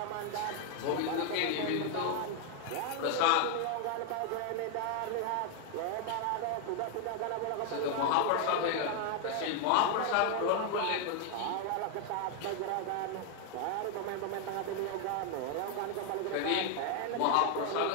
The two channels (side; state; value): both; different; correlation 0.00